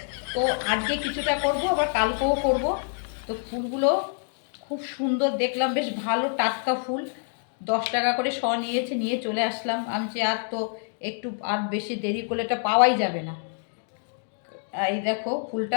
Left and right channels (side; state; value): right; silent; 61 dB below the other